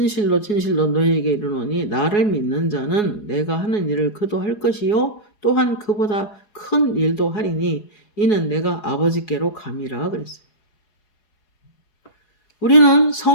너희에게 이르노니 나를 믿는 자는 내가 하는 일을 그도 할 것이요 또한 그보다 큰 일도 하리니 이는 내가 아버지께로 감이라 그랬어요. 우리는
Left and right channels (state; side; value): late; right; 4.8 ms